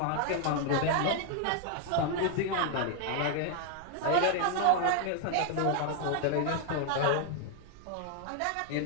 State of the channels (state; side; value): different; both; correlation 0.00